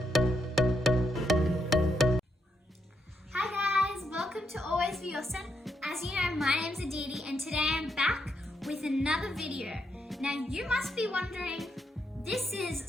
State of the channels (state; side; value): normal; both; correlation 0.79